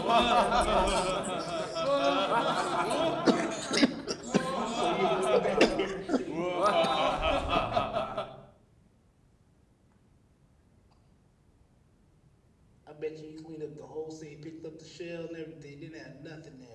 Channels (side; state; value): both; identical; correlation 1.00